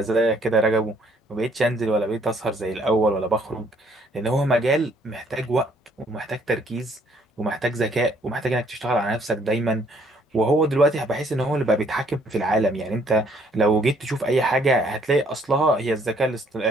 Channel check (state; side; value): normal; both; correlation 0.64